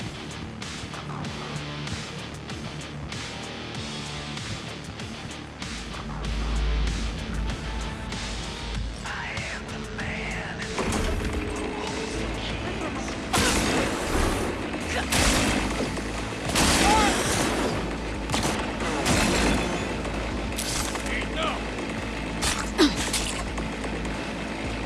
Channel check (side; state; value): both; identical; correlation 1.00